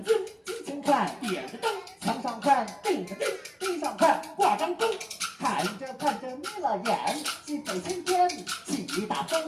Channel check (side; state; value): both; identical; correlation 1.00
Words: 经，金前看点着灯，墙上看定着钉，地上看挂张钟，看着眯了眼，西北青天起大